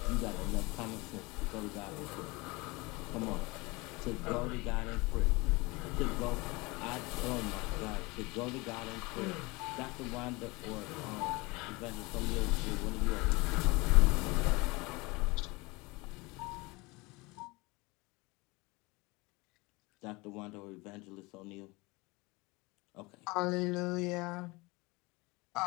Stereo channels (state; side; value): quieter; right; 24.5 dB